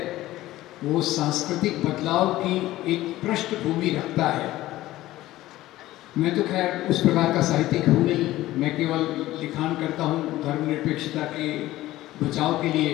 वो सांस्कृतिक बदलाव की एक पृष्ठभूमि रखता है। मैं तो खैर उस प्रकार का साहित्यिक हूँ नहीं, मैं केवल लिखान करता हूँ धर्मनिरपेक्षता के बचाव के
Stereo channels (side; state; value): right; quieter; 16.0 dB